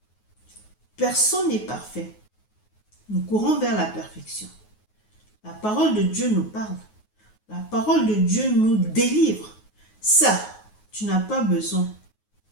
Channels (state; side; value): late; right; 9.4 ms